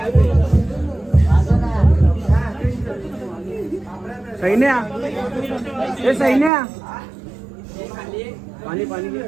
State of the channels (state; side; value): drops out; left; at 6.5 s